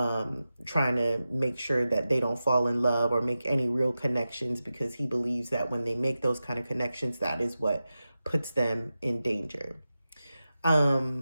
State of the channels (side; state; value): both; inverted; correlation -0.92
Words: to make sure that they don't fall in love or make any real connections, because he believes that when they make those kind of connections, that is what puts them in danger.